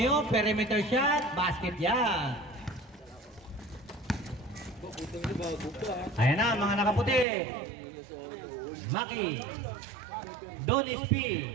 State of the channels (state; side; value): drops out; left; at 7.2 s